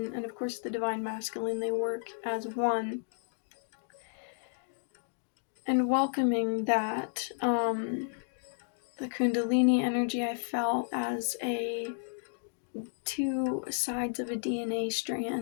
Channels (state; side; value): silent; right; digital silence